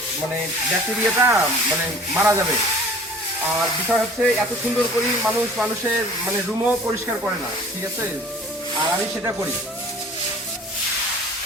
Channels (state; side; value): normal; both; correlation 0.47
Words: মানে ব্যাকটেরিয়াটা মানে মারা যাবে। আর বিষয় হচ্ছে এত সুন্দর করি মানুষের মানে রুমও পরিষ্কার করে না, ঠিক আছে? আর আমি সেটা করি।